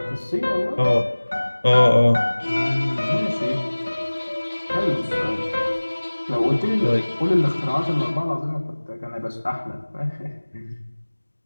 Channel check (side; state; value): both; inverted; correlation -1.00